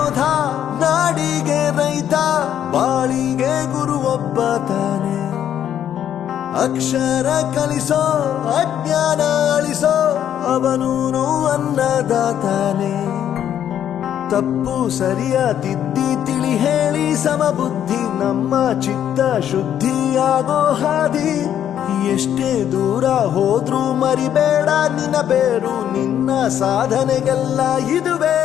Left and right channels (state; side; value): quieter; right; 10.1 dB